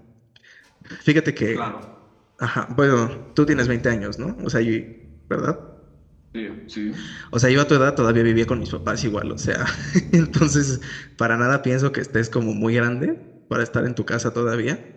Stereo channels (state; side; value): identical; both; correlation 1.00